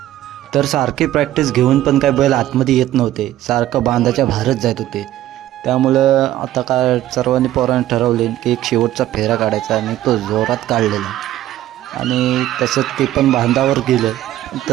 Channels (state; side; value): quieter; left; 13.7 dB